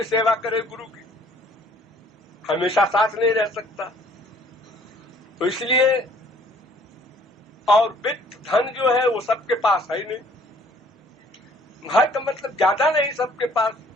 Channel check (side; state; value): both; normal; correlation 0.58